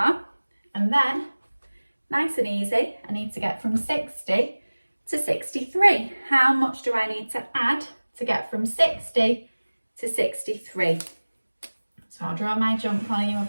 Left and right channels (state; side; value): inverted; both; correlation -1.00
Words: And then, nice and easy, I need to get from 60 to 63. How much do I need to add to get from 60 to 63? So I'll draw my jump while you have